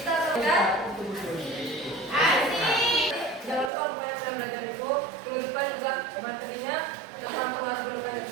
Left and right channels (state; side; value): drops out; left; at 3.7 s